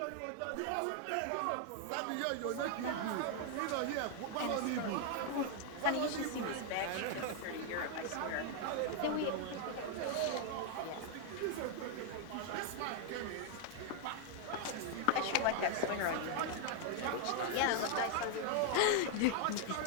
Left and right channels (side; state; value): both; different; correlation 0.00